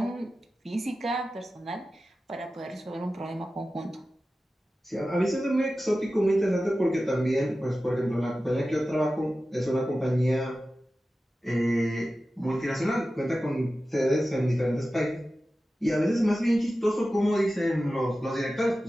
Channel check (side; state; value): both; normal; correlation 0.94